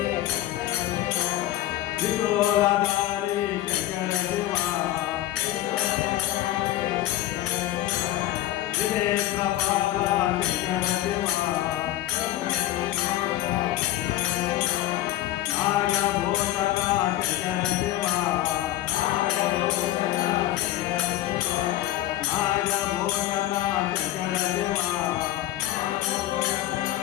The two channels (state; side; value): quieter; right; 14.3 dB